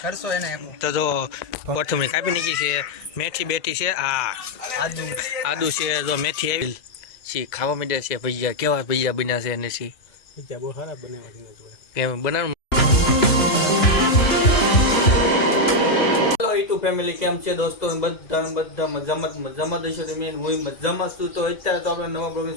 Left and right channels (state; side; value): late; right; 2.9 ms